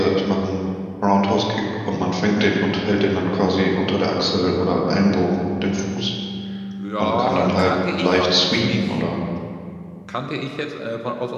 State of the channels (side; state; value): both; identical; correlation 1.00